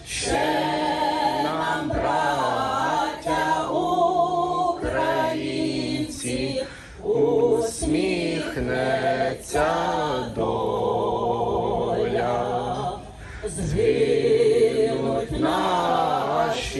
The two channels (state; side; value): identical; both; correlation 1.00